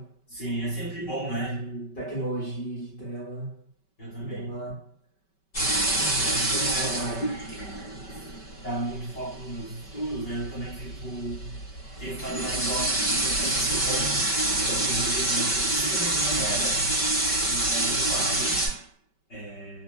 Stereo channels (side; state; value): right; late; 5.2 ms